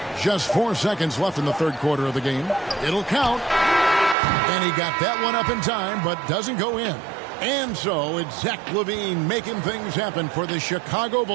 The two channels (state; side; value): drops out; left; at 4.2 s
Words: Just 4 seconds left in the third quarter of the game. It'll count. And he got that one up in time, but doesn't go in. And so it's Zach LaVine making things happen for the Chicago